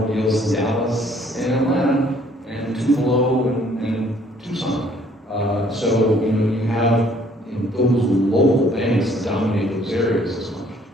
deals in Dallas and Atlanta and Tupelo and Tucson. So you have those local banks dominate those areas as much.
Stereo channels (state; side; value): normal; both; correlation 0.61